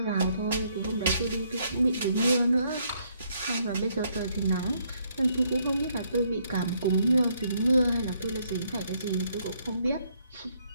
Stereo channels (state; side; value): inverted; both; correlation -0.71